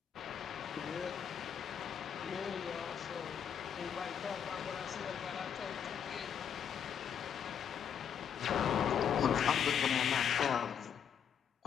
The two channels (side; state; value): right; quieter; 8.1 dB